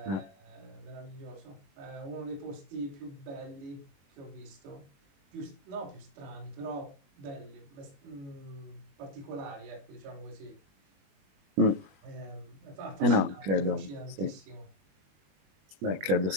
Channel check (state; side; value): late; left; 21 ms